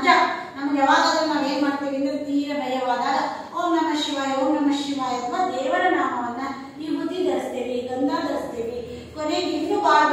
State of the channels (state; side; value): identical; both; correlation 1.00